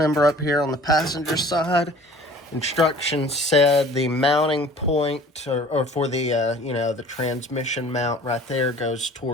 up here on the passenger side. Instructions said the mounting point or for the the transmission mount right there goes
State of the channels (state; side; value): normal; both; correlation 0.48